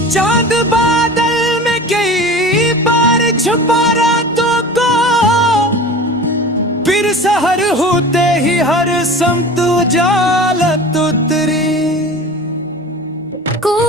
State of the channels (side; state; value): both; normal; correlation 0.36